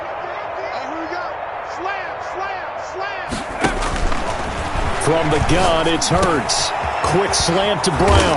And here we go. Slam. From the gun, it's Hurts. Quick slant to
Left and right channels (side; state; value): both; identical; correlation 1.00